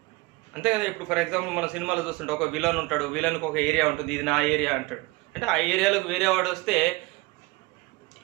అంతే కదా. ఇప్పుడు ఫర్ ఎగ్జాంపుల్ మన సినిమాలో చూస్తుంటే ఒక విలన్ ఉంటాడు, విలన్కి ఒక ఏరియా ఉంటుంది, ఇది నా ఏరియా అంటాడు. అంటే ఆ ఏరియాలోకి వేరే వాడు వస్తే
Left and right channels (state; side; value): quieter; left; 22.9 dB